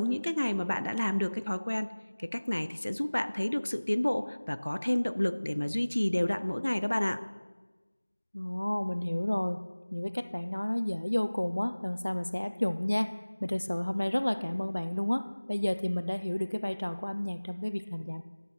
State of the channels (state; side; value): inverted; both; correlation -1.00